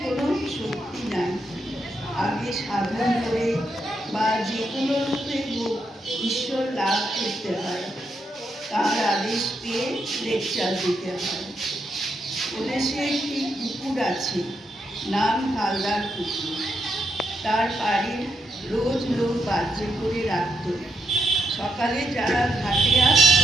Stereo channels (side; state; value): both; normal; correlation 0.80